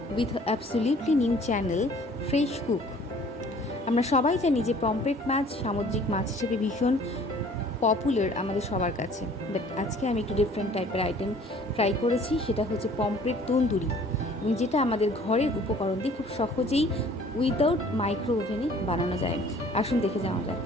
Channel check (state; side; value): normal; both; correlation 0.53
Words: with a absolutely new channel Fresh Cook. আমরা সবাই জানি যে পমফ্রেট মাছ সামুদ্রিক মাছ হিসেবে ভীষণ পপুলার আমাদের সবার কাছে। বাট আজকে আমি একটু ডিফারেন্ট টাইপের আইটেম ট্রাই করেছি, সেটা হচ্ছে পমফ্রেট তন্দুরি, এবং যেটা আমাদের ঘরের উপকরণ দিয়ে খুব সহজেই উইদাউট মাইক্রো ওভেনে বানানো যায়। আসুন দেখে যাওয়া যাক।